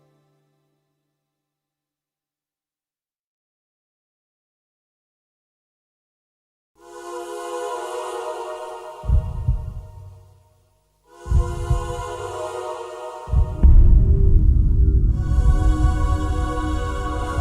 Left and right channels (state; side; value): identical; both; correlation 1.00